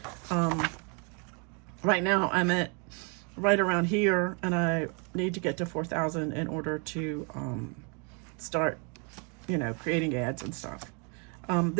Right now I'm at right around here, and I need to get to 4,000 in order to start, you know, creating ads and stuff.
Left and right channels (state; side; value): quieter; left; 35.8 dB